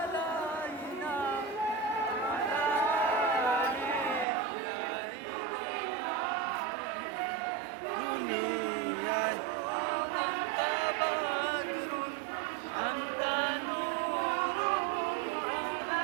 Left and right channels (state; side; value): drops out; left; at 4.2 s